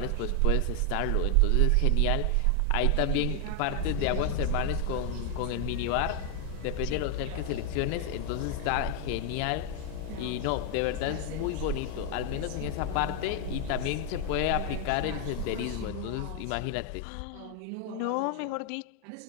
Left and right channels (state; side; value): different; both; correlation 0.00